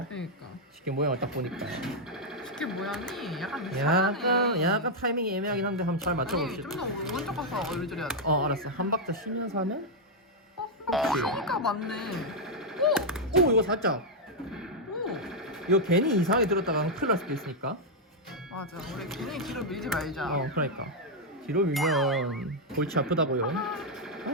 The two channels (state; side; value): normal; both; correlation -0.02